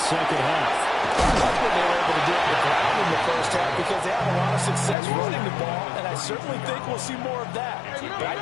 half? I like what they were able to do with the crowd in the first half because they had a lot of success running the ball, and I certainly think we'll see more of that. But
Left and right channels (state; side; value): drops out; right; at 5.0 s